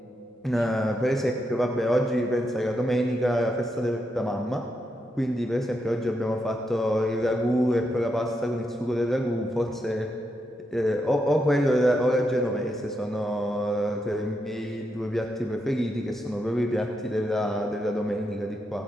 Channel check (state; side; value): normal; both; correlation 0.82